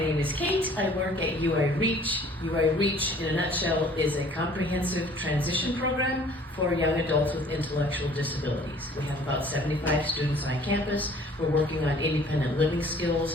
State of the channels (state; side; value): normal; both; correlation 0.53